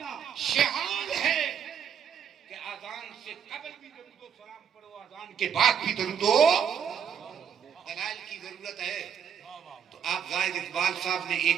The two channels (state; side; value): quieter; left; 7.9 dB